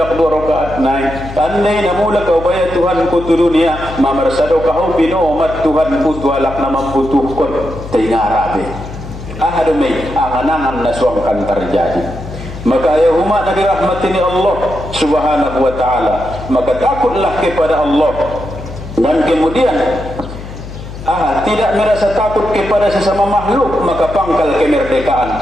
2 rakaat naik andai na mula kau baya Tuhan kutu dunia mamarsado kau binomat Tuhan kutu alak na mamputuhkon tingarabe ahadumai angan-angan na suangkan terjadi. Maka ya huma nabi rahmatini Allah subhanahu wa ta'ala, maka takutlah kepada Allah, dan kemudian tidak merasa takut kepada sesama makhluk, maka pangkal kemerdekaan.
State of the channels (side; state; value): left; noise; hum, 11 dB below the sound